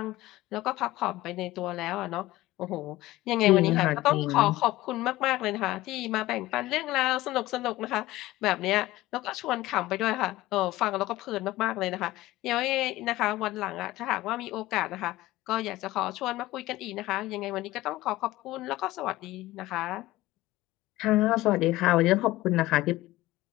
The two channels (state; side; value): quieter; right; 17.4 dB